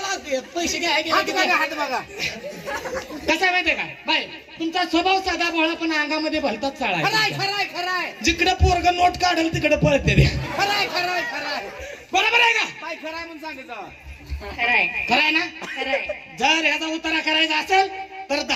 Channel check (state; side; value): identical; both; correlation 1.00